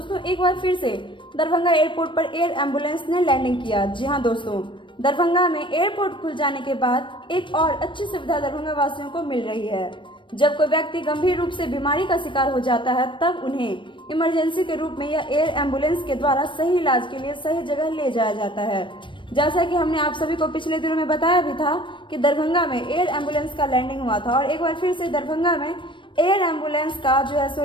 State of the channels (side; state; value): right; late; 0.24 ms